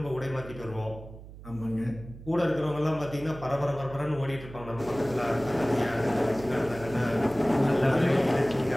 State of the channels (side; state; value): right; noise; hum, 16 dB below the sound